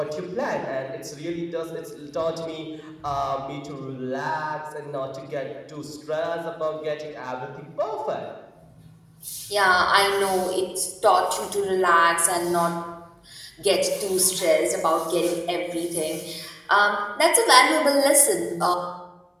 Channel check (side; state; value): both; identical; correlation 1.00